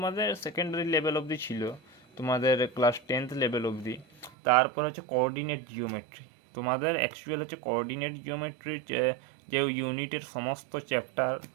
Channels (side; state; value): left; drops out; at 4.3 s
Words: সেকেন্ডারি লেভেল অবধি ছিল, তোমাদের ক্লাস 10th লেভেল অবধি। তারপর হচ্ছে কোঅর্ডিনেট জিওমেট্রি, তোমাদের অ্যাকচুয়াল হচ্ছে কোঅর্ডিনেট জিওমেট্রির যে ইউনিটের সমস্ত চ্যাপ্টার,